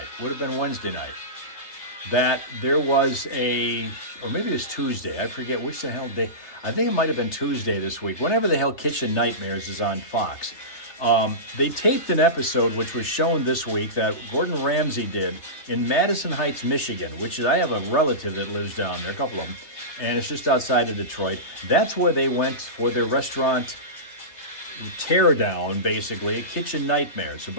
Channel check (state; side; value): late; right; 3.3 ms